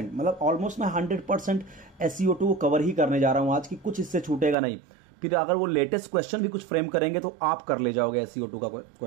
मतलब ऑलमोस्ट मैं 100% SiO2 को कवर ही करने जा रहा हूं आज की, कुछ इससे छूटेगा नहीं। फिर अगर वो लेटेस्ट क्वेश्चन भी कुछ फ्रेम करेंगे तो आप कर ले जाओगे SiO2 का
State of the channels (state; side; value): drops out; left; at 4.5 s